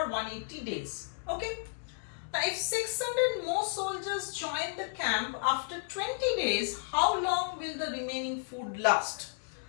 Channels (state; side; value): silent; right; digital silence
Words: 180 days. Okay. Now if 600 more soldiers join the camp after 20 days, how long will the remaining food last?